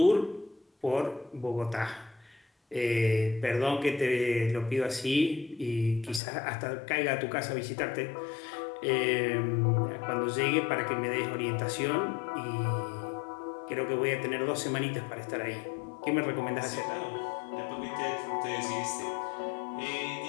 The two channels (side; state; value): right; drops out; at 6.2 s